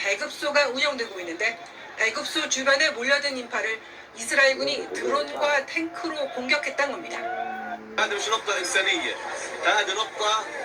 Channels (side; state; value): both; identical; correlation 1.00